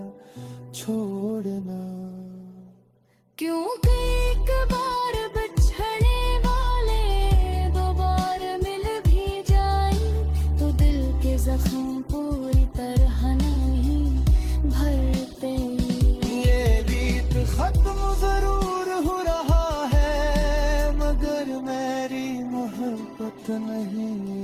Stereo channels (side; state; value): both; identical; correlation 1.00